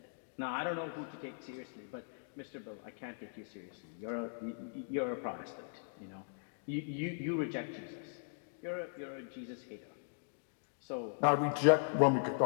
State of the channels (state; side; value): silent; right; digital silence